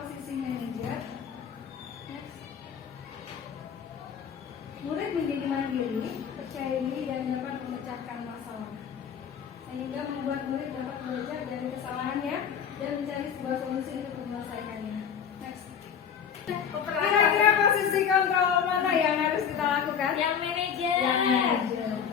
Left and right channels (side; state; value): right; quieter; 7.7 dB